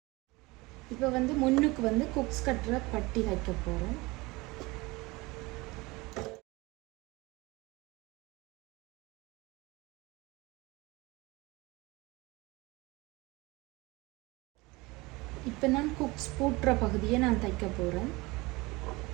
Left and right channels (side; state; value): left; quieter; 23.1 dB